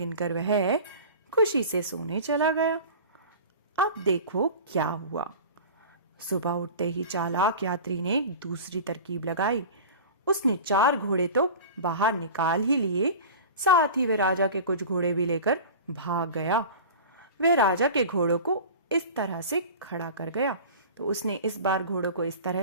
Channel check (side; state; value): both; inverted; correlation -0.36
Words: वह खुशी से सोने चला गया। अब देखो क्या हुआ। सुबह उठते ही चालाक यात्री ने एक दूसरी तरकीब लगाई। उसने 4 घोड़े तो बाहर निकाल ही लिए, साथ ही वह राजा के कुछ घोड़े भी लेकर भाग गया। वह राजा के घोड़ों को इस तरह से खड़ा कर गया। तो उसने इस बार घोड़ों को इस तरह